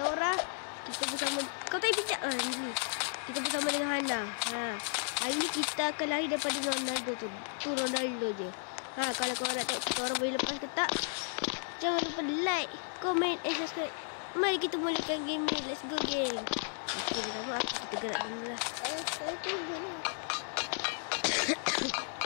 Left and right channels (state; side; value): silent; right; 55 dB below the other